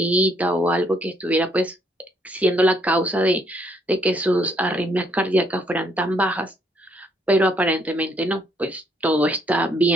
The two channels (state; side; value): normal; both; correlation 0.70